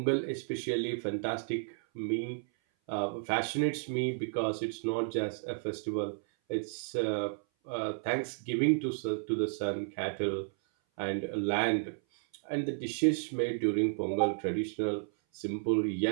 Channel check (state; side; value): silent; left; 56 dB below the other